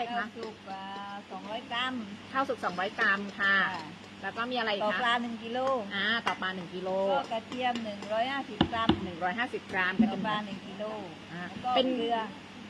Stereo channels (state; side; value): identical; both; correlation 1.00